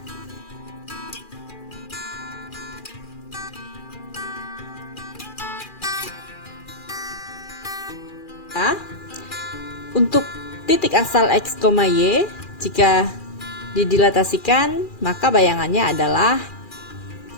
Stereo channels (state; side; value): late; right; 2.4 ms